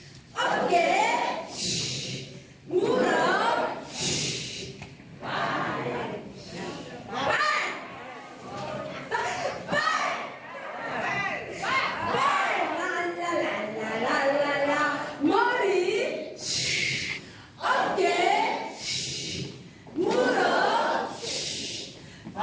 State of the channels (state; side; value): identical; both; correlation 1.00